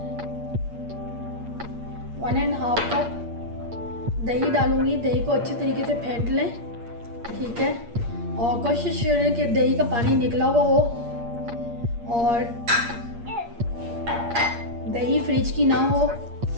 1.5 कप दही डालूँगी। दही को अच्छे तरीके से फेंट लें। ठीक है, और कोशिश करें कि दही का पानी निकला हुआ हो और दही फ्रिज की ना हो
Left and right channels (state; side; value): late; left; 8.6 ms